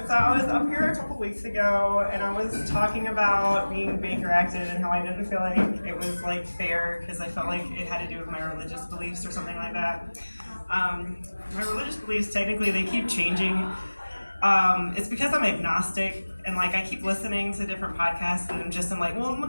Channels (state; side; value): inverted; both; correlation -1.00